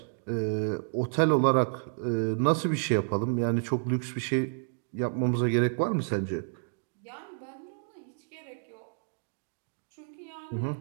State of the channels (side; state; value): left; silent; digital silence